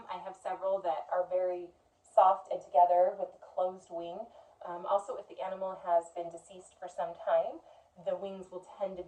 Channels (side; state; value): both; identical; correlation 1.00